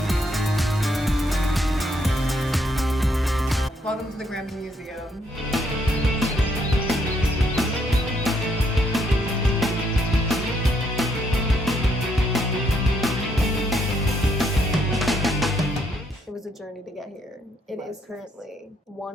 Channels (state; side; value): normal; both; correlation 0.73